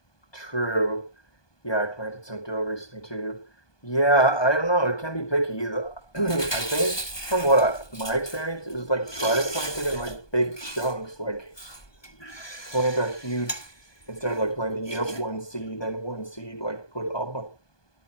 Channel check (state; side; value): late; right; 1.2 ms